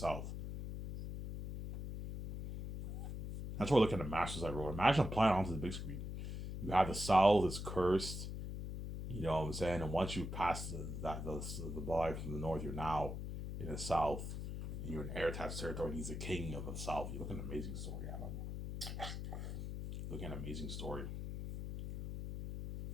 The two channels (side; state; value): left; noise; hum, 6 dB below the sound